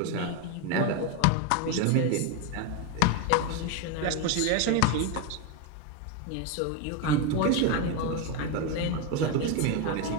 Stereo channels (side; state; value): both; different; correlation 0.02